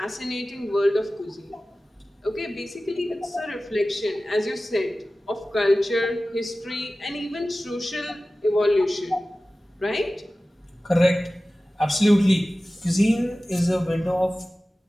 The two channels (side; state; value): both; normal; correlation 0.96